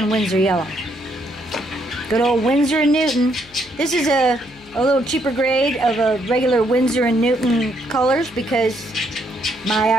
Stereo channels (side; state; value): left; noise; hum, 25 dB below the sound